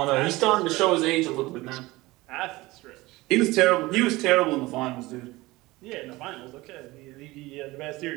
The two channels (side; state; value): left; quieter; 20.2 dB